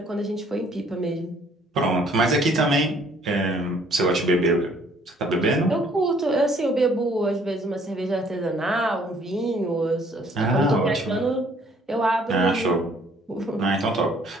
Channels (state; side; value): normal; both; correlation 0.61